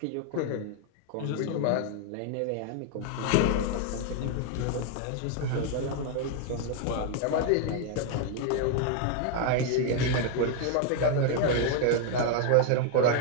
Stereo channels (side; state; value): both; different; correlation 0.00